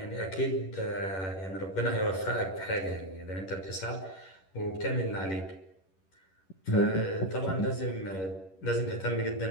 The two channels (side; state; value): right; late; 11 ms